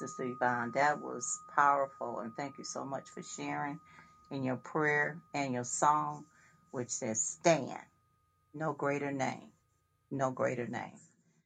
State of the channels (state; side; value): identical; both; correlation 1.00